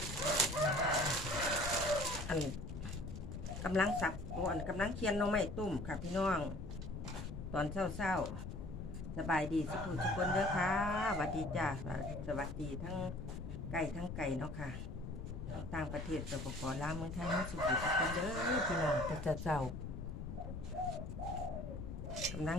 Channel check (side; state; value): left; noise; rumble, 7 dB below the sound